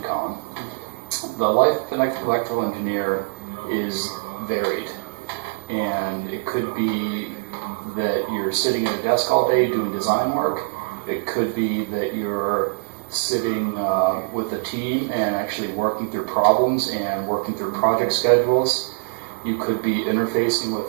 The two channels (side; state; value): left; silent; digital silence